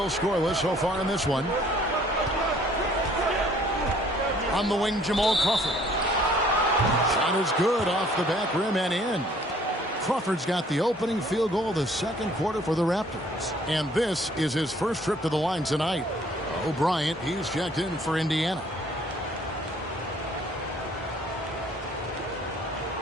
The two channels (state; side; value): normal; both; correlation 0.58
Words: scoreless so far in this one. On the wing, Jamal Crawford. Shot is good off the back rim and in. Crawford's got the opening field goal of the second quarter for the Raptors. And this is his first trip to the line tonight. O'Brien, he's checked in for Indiana.